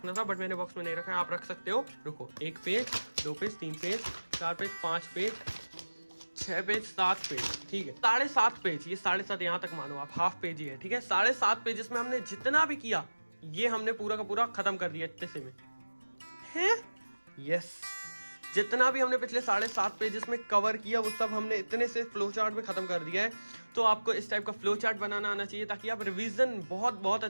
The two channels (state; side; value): inverted; both; correlation -1.00